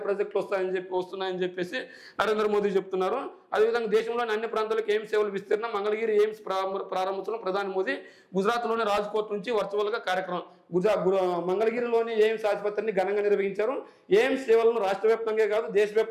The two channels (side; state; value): both; identical; correlation 1.00